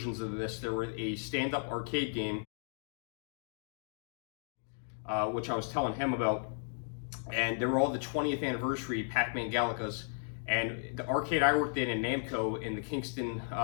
of this. There were a stand-up arcade game, which I was telling him about, and there were all the 20th anniversary Pac-Man Galacas. And the arcade I worked in Namco in Kingston,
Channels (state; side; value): silent; right; digital silence